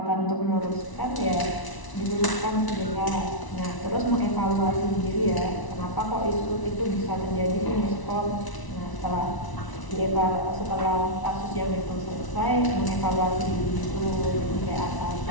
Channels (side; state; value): right; late; 1.0 ms